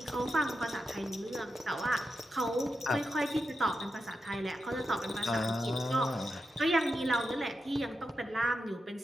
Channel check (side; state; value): both; normal; correlation 0.88